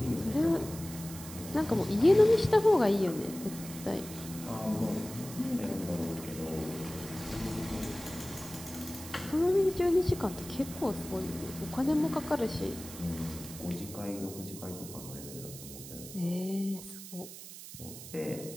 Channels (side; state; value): right; noise; hiss, 13 dB below the sound